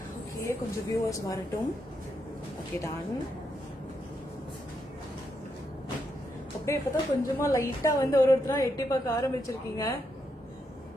Okay, கொஞ்சம் viewers வரட்டும். Okay, done. அப்படியே இப்பதான் கொஞ்சமா லைட்டா வந்து ஒருத்தரா எட்டி பார்க்க ஆரம்பிச்சிருக்கீங்க.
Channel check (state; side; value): normal; both; correlation 0.81